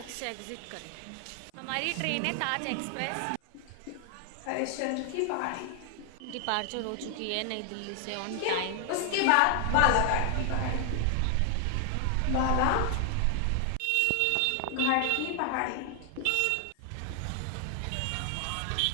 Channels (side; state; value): both; different; correlation 0.00